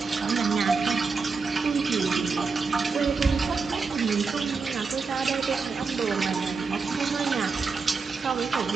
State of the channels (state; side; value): quieter; left; 4.7 dB